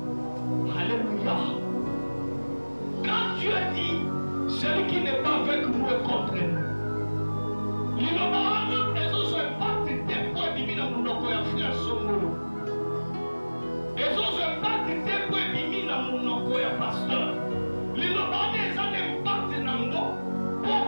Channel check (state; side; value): inverted; both; correlation -1.00